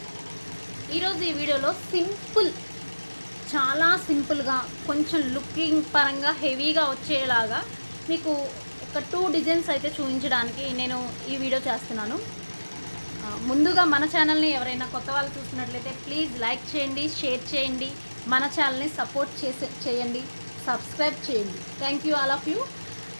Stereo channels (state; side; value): inverted; both; correlation -1.00